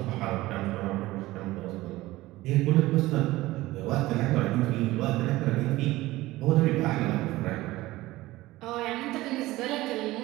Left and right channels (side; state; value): left; quieter; 18.0 dB